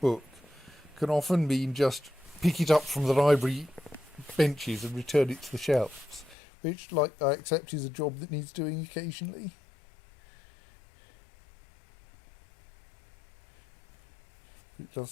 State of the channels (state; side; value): drops out; right; at 6.4 s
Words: can often mean just pick it up from the library benches and return it to the shelves, which, like, I accept is a job that needs doing occasionally. It does